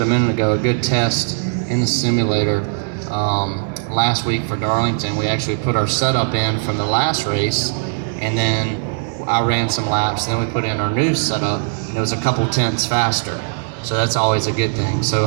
a minute ago, a good test in the simulator last week for Darlington. We actually put our setup in from the last race, and then I ran some laps, and then we put in our new setup, and it was a couple tenths faster. So that's always a good thing.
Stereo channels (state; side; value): silent; left; digital silence